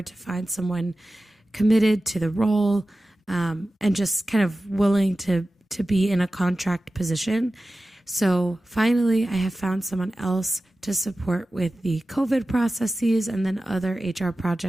to find someone committed to the role, and just kind of willing to be in a contract position. So finally, I have found someone else to support with the COVID processes and then other HR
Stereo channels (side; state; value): both; normal; correlation 0.95